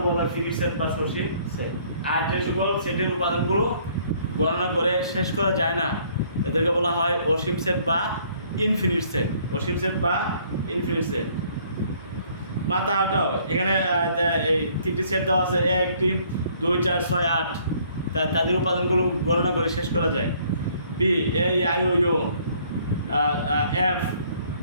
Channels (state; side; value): inverted; both; correlation -0.62